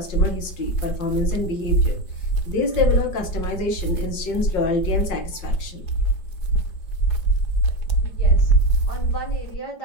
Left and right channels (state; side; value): late; right; 5.6 ms